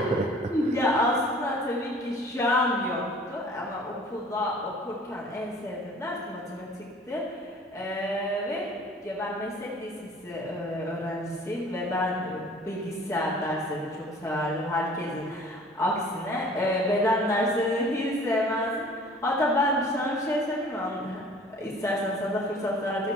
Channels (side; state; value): both; normal; correlation 0.49